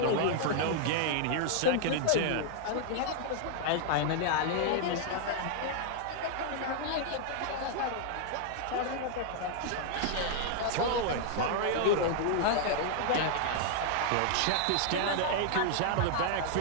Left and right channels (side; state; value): both; different; correlation -0.01